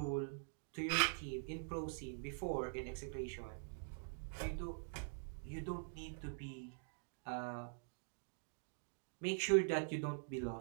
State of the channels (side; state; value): left; silent; digital silence